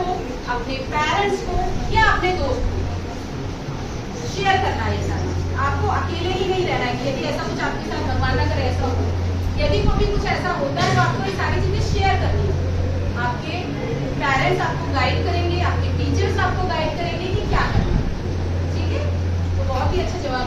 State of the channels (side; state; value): both; identical; correlation 1.00